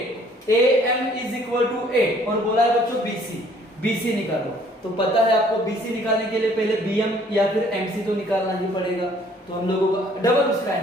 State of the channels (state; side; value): normal; both; correlation 0.59